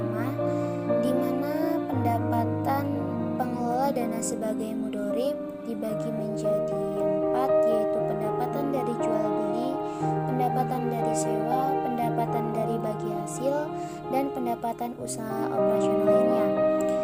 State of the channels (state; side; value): identical; both; correlation 1.00